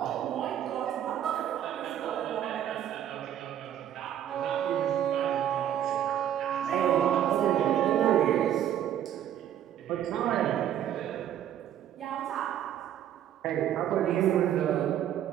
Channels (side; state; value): left; quieter; 10.7 dB